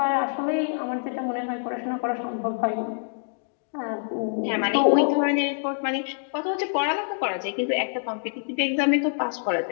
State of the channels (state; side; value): silent; right; digital silence